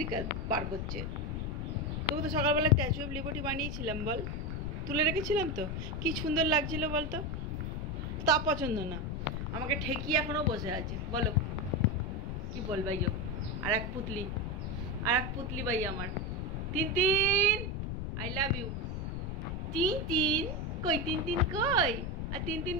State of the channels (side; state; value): left; noise; rumble, 3 dB below the sound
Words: বার করছে। তোকে তো সকালবেলা স্ট্যাচু অফ লিবার্টি বানিয়েছিলাম বল, তুলে রেখেছিলাম তো, কি সুন্দর লাগছিল বলতো, তা পছন্দ না, আমাকে ঠেকিয়ে এখনো বসে আছে। বলো কি বল ভাই? আর এক পুতলি ভাই আমার তিন আই লাভ ইউ। তিন কই তিন কই, আর তিন